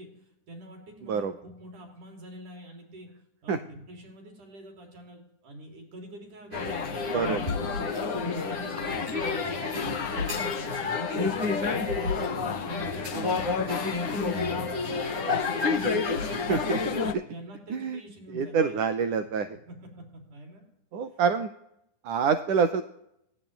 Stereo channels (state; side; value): late; left; 10 ms